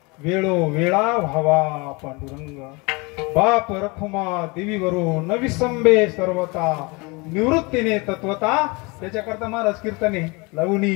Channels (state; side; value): quieter; right; 27.4 dB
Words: वेळो वेळा व्हावा पांडुरंग. बाप रखुमा देवीवरू न विसंबे सर्वता, निवृत्तीने तत्वता. त्याच्याकरता महाराज कीर्तने लवणी